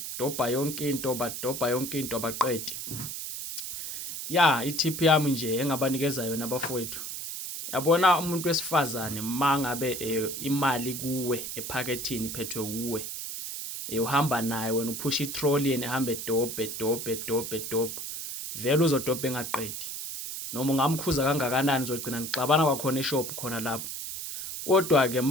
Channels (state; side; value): noise; right; hiss, 6 dB below the sound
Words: yonke into abaqedi. Ya, i-tip yami nje engabanikeza yona abafowethu. Yabona umuntu wesifazane mangabe imali kuwe ephakethini iphethwe kuwe. Uhamba naye wena uphusha i-trolley ehambe dobhe. Vele uzodobha engaqedi. Noma ungamkhuza kangakanani uzogcina ngixabana kwakhona eshop khona lapho. Kodwa ke